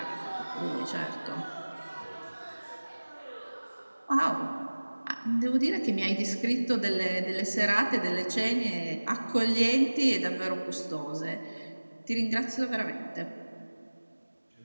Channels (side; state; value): both; inverted; correlation -1.00